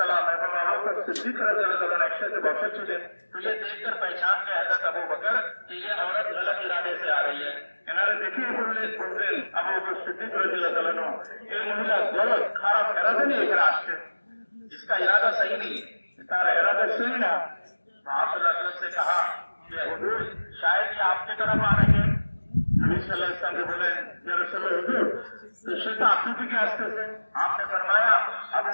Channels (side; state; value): both; inverted; correlation -1.00